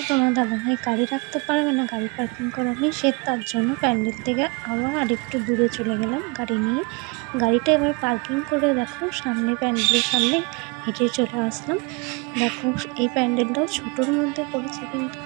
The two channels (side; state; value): left; quieter; 30.0 dB